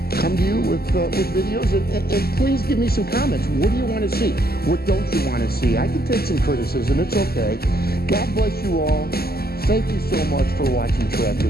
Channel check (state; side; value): late; right; 0.45 ms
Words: come to you with videos, and please give me some comments. What do you want to see? What don't you want to see? I can take some criticism. It's okay. God bless you all. Thank you so much for watching